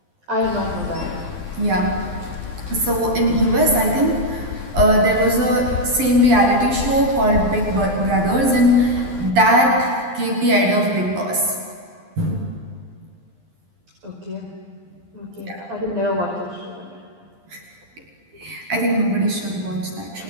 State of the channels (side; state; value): left; late; 11 ms